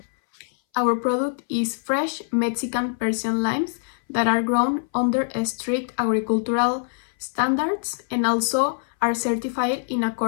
Our product is fresh Mexican Persian limes that are grown under strict agricultural standards and also are certified in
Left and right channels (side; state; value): right; silent; 60 dB below the other